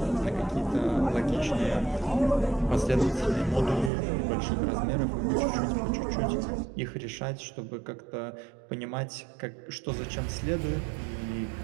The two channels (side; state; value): left; drops out; at 3.9 s